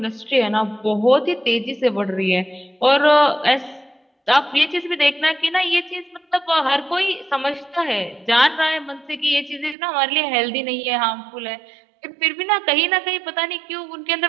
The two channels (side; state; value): left; drops out; at 9.8 s